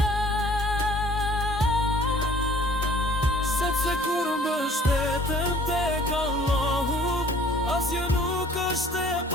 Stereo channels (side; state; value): both; normal; correlation 0.54